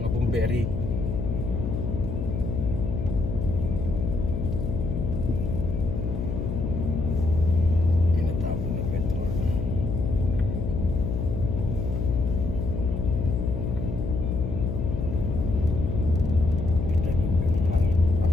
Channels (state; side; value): noise; left; hum, 3 dB below the sound